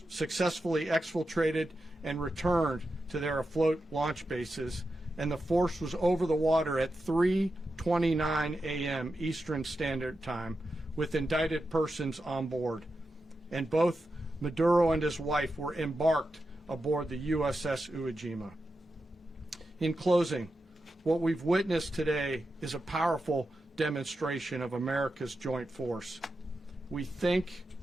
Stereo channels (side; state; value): both; normal; correlation 0.89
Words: successfully exfiltrated and returned to their afloat launch bases, and the force was over the water at 3:29 a.m. Eastern Standard Time with indicted persons on board. And both Maduro and his wife were embarked aboard the USS Iwo Jima. In closing, what we've witnessed today is a powerful demonstration of America's joint force. We think,